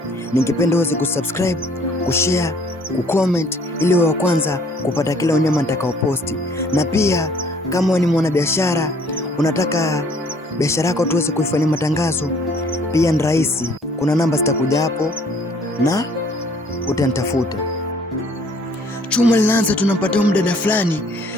ningependa uweze kusubscribe, kushare, kucomment ili wa kwanza kupata kila unyama nitakaoposti. Na pia kama wewe ni mwanabiashara, unataka biashara yako tuweze kuifanyia matangazo, pia ni rahisi. Kuna namba zitakuja hapo na utanitafuta. Chuma linaanza, tunampata mdada fulani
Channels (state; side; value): normal; both; correlation 0.59